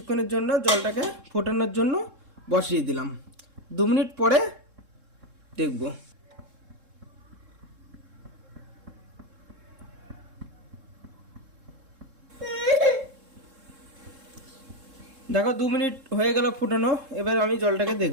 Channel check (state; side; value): late; left; 3.7 ms